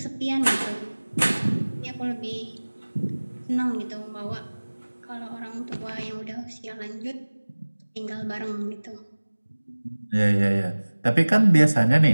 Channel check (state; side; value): inverted; both; correlation -1.00